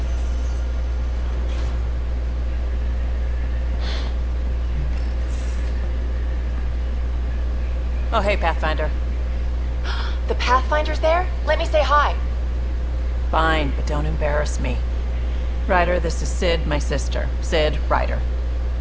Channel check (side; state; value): both; identical; correlation 1.00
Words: Oh, hey, Pathfinder. The Pathfinder's there? Let me say hi. Fine, but don't embarrass me. Ryder, this is Sid, my sister. Sid, Ryder.